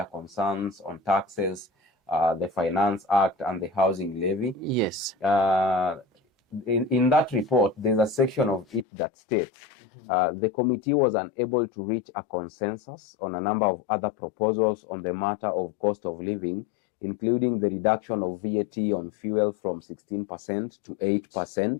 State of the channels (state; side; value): drops out; right; at 8.8 s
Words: concerns on taxes, the Finance Act, and the housing levy. Yes. In that report, there's a section of it that states the committee was unable to reach a consensus on a number of other proposals on the matter of cost of living, including the reduction of VAT on fuel from 16% to